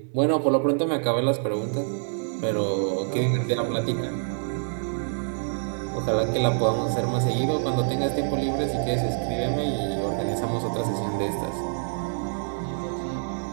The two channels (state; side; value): silent; left; digital silence